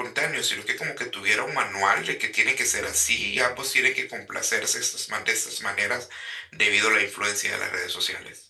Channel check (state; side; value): identical; both; correlation 1.00